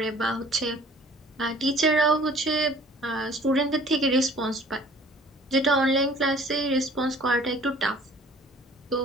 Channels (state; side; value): normal; both; correlation 0.52